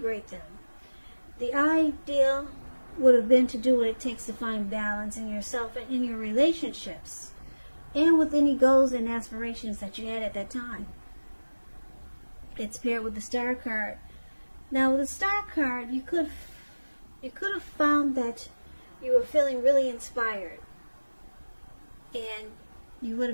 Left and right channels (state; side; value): inverted; both; correlation -1.00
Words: them. The ideal would have been to do what it takes to find balance in yourself and in your relationships, and with any goals and aspirations that you had at that time. It's paired with the Star card. Now, with the Star card, you could have found that you were feeling really inspired, and you would